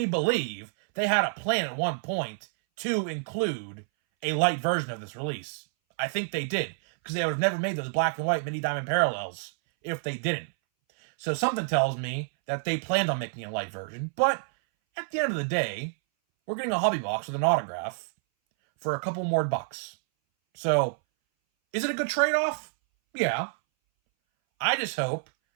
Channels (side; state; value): left; silent; 59 dB below the other